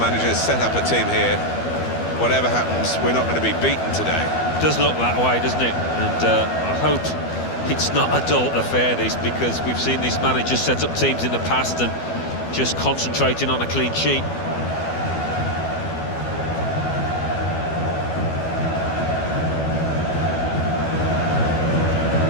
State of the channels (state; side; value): late; right; 12 ms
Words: has set up a team here. Whatever happens, we're not going to be beaten today. Does look that way, doesn't it? And I hope it's not a dull affair, this, because we've seen this manager set up teams in the past and just concentrating on a clean sheet.